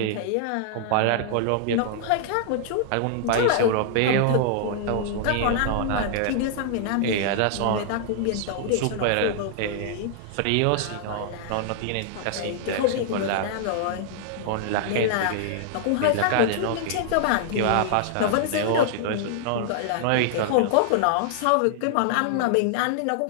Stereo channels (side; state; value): both; different; correlation -0.01